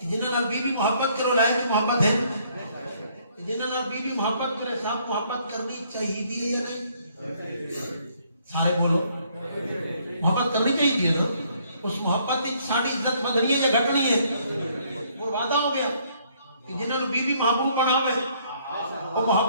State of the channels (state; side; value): inverted; both; correlation -0.66